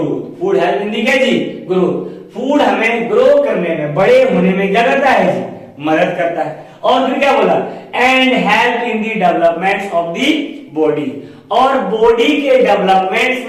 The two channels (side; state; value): both; identical; correlation 1.00